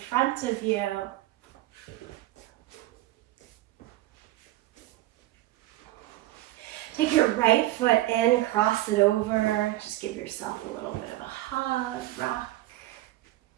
of you. Take your right foot in, cross it over. Just give yourself a little bit of a hug, rock.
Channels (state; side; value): quieter; left; 16.5 dB